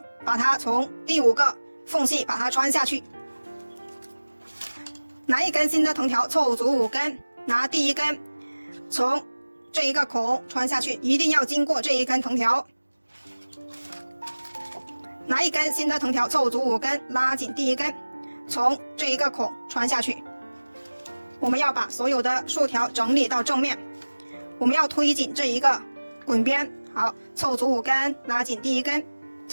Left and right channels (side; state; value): both; inverted; correlation -1.00